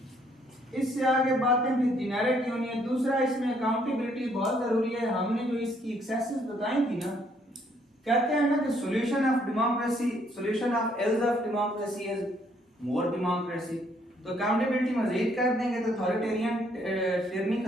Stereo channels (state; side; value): normal; both; correlation 0.68